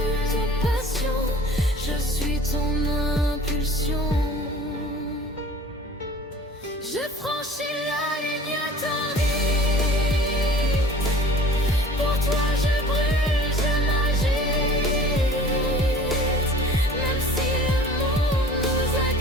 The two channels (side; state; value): both; normal; correlation 0.46